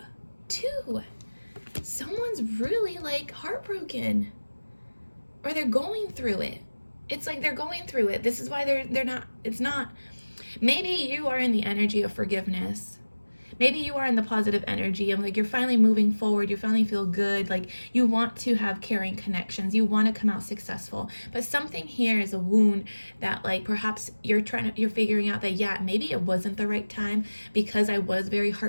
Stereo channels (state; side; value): inverted; both; correlation -1.00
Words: Someone's really like heartbroken, or they're going through it. It's like they're going through it. This is why they're not. It's not. Maybe you are in the energy of forgiveness. Maybe you are in the positive energy of like you're finally moving forward, you finally feel good, like you want to have caring connections, you want to come out successful. But something here is a wound that like perhaps you're figuring out that yeah, maybe it wasn't the right time because I was very